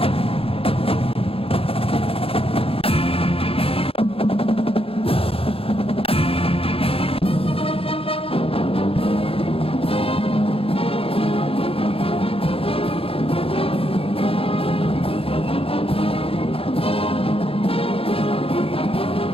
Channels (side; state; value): right; late; 0.27 ms